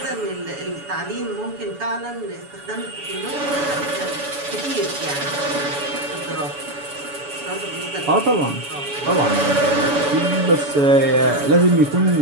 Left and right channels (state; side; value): late; left; 7.0 ms